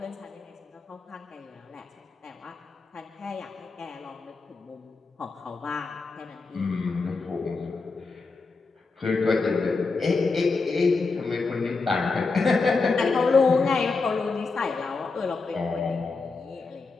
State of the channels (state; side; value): quieter; right; 4.1 dB